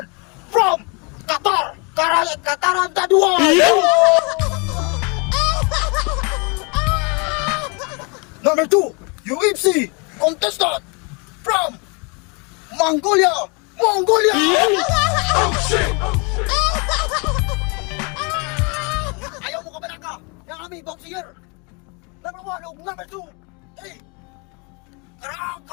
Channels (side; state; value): right; quieter; 32.6 dB